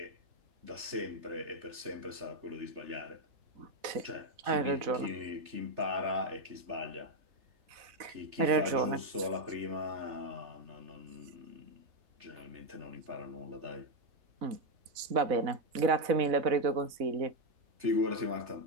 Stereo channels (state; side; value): late; left; 4.0 ms